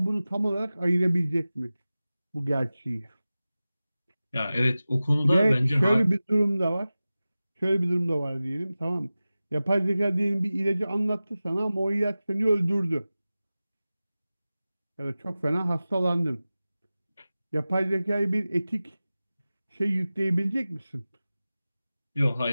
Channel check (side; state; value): both; inverted; correlation -0.96